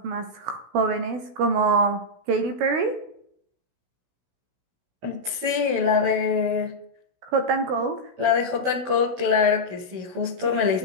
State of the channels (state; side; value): late; left; 16 ms